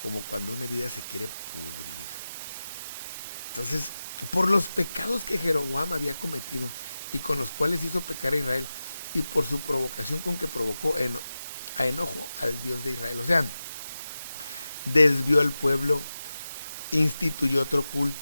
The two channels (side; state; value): both; inverted; correlation -0.94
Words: como cuando una herida se quiere pudrir. Entonces, por los pecados que Jeroboam había cometido y con los cuales hizo pecar a Israel, y por su provocación con que provocó a enojo al Dios de Israel. O sea, desvió al pueblo, instituyó otro